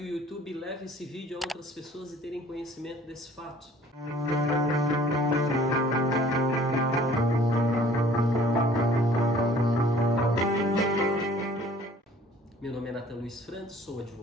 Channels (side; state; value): both; normal; correlation 0.53